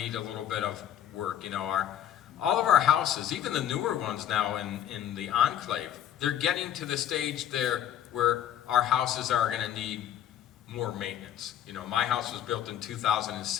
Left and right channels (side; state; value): right; quieter; 10.8 dB